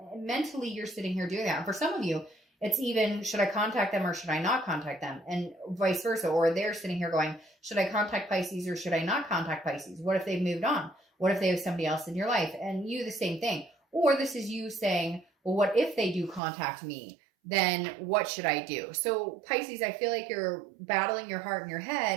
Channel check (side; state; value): left; drops out; at 16.4 s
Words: Mentally, you're sitting here doing that. And for some of you, it's even, should I contact them or should I not contact them? And vice versa. Or they're sitting here going, should I contact Pisces or should I not contact Pisces? What if they've moved on? What if they have somebody else in your life? And you, the same thing. Or this is you saying, well, what if they do contact me? Then what should I do? So Pisces, I feel like you're battling your heart and your